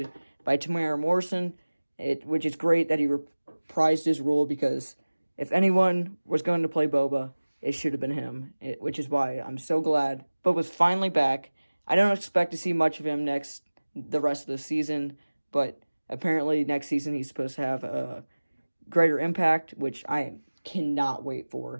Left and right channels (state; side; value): inverted; both; correlation -1.00